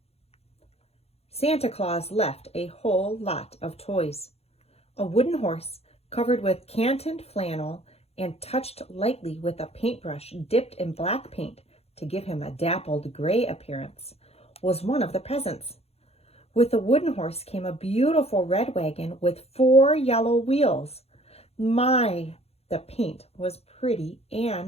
Santa Claus left a whole lot of toys. A wooden horse covered with cantoned flannel and touched lightly with a paintbrush dipped in black paint to give him a dappled gray appearance was one of the presents. With the wooden horse came a beautiful red wagon with 4 yellow wheels. My, the paint was pretty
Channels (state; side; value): late; right; 0.30 ms